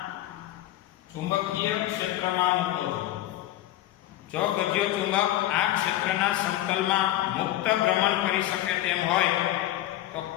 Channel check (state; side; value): quieter; right; 14.2 dB